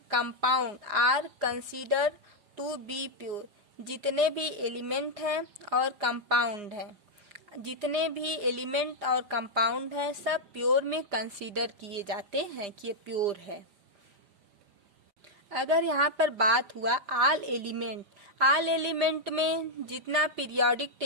compound are considered to be pure. जितने भी एलिमेंट हैं और कंपाउंड हैं, जितने भी एलिमेंट और कंपाउंड हैं सब प्योर में कंसीडर किए जाते हैं कि ये प्योर है। अगर यहाँ पर बात हुआ ऑल एलिमेंट, ऑल एलिमेंट में जितना पीरियोडिक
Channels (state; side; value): late; left; 4.9 ms